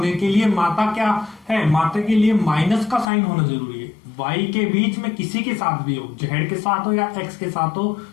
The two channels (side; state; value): right; drops out; at 3.1 s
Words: के लिए माता क्या है, माता के लिए माइनस का साइन होना जरूरी है। वाई के बीच में किसी के साथ भी हो, जेड के साथ हो या एक्स के साथ हो,